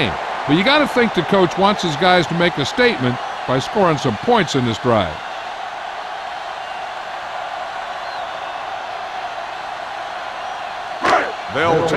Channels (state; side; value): identical; both; correlation 1.00